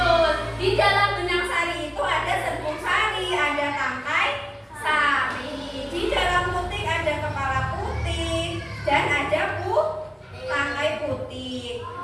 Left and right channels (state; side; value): identical; both; correlation 1.00